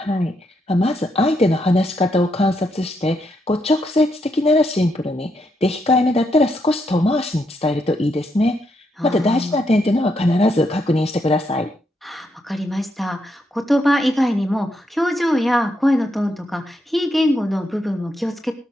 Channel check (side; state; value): both; normal; correlation 0.79